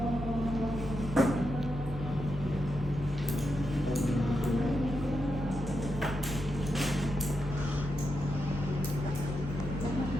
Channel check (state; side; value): normal; both; correlation 0.86